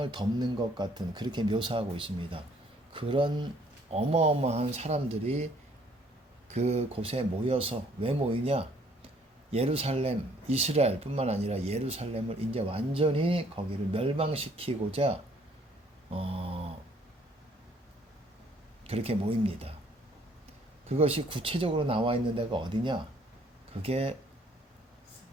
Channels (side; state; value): both; normal; correlation 0.62